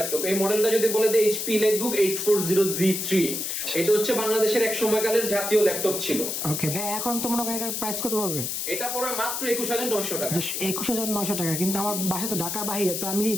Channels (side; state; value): left; noise; hiss, 3 dB below the sound